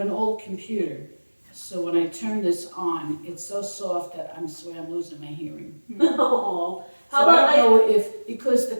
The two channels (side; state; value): both; inverted; correlation -1.00